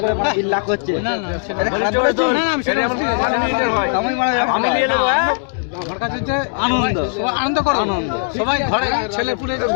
করে মানে 3 লাখ হচ্ছে না না এটা খারাপ বলেছো না না সেটা আমার মিনিটের হয় আমি নিয়ে নেব হ্যাঁ আমার কাছে হচ্ছে আনন্দ সবাই আনন্দ করো আনন্দ সবাই ঘরে ছেলে পুলে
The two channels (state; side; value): silent; right; digital silence